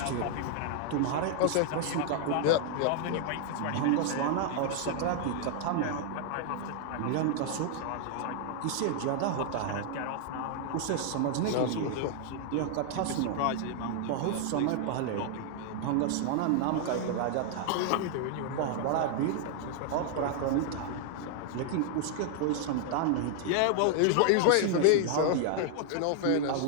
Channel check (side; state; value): both; different; correlation 0.00